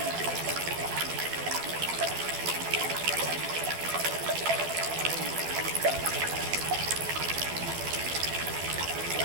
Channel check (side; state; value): left; late; 12 ms